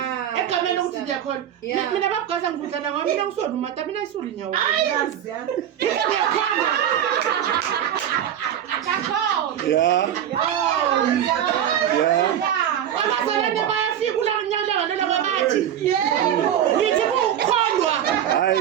egameni lokuthi siyakholwa mina babugaza ngivudlana ngoba mina ngisona umata mina isuli nyawo Yeah. abazalwane bayafika ulanyalanga lelo babathi ngithi kukholwa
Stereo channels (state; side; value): quieter; left; 10.2 dB